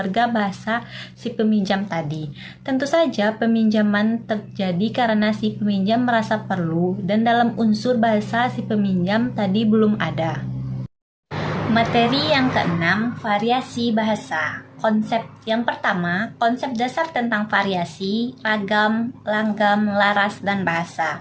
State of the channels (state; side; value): identical; both; correlation 1.00